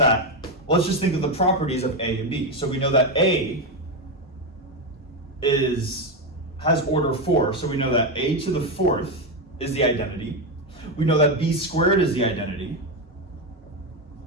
let's just think of the properties of A and B. So we know that A has order 4, so we know that A to the 4th is the identity. We know that B squared is the identity.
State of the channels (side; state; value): both; normal; correlation 0.10